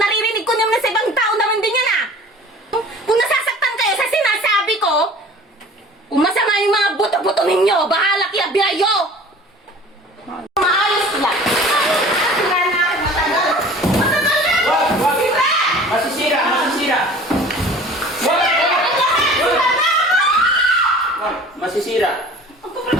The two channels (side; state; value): both; normal; correlation 0.45